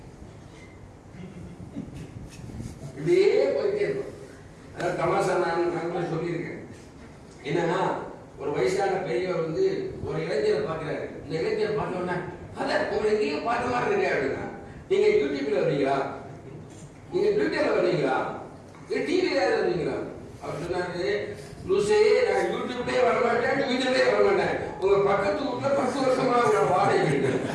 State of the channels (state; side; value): identical; both; correlation 1.00